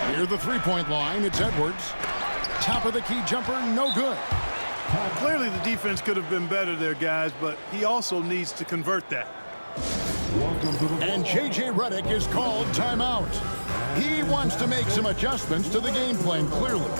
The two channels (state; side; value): inverted; both; correlation -1.00